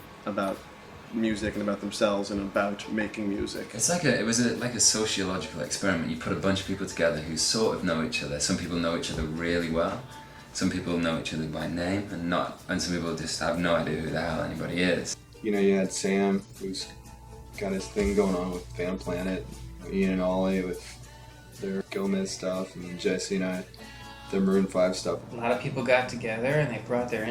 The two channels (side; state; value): both; identical; correlation 1.00